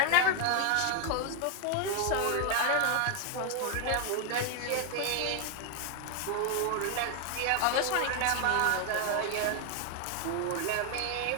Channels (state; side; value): different; both; correlation 0.01